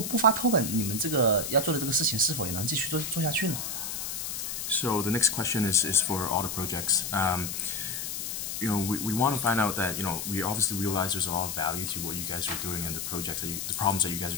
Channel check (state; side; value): noise; left; hiss, 4 dB below the sound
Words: 不发 token， 你们这个要做的这个事情是否也能继续做下去呢？ So the next question is for all the projects. We want to find out that we obviously realize there's a lot of value to what you guys are doing and the projects the problems that you guys